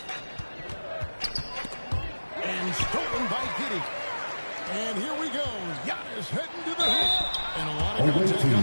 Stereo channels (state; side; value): inverted; both; correlation -1.00